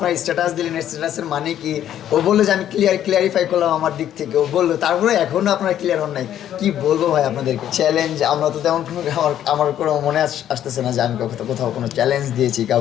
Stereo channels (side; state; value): right; quieter; 10.9 dB